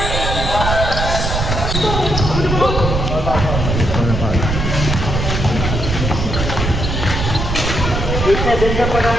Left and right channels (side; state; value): right; noise; rumble, 2 dB below the sound